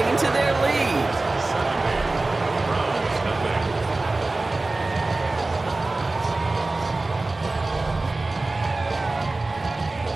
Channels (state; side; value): quieter; left; 3.1 dB